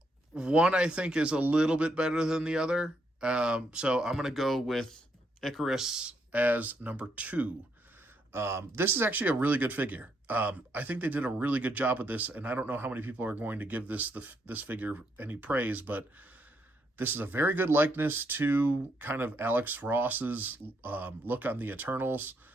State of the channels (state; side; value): normal; both; correlation 0.76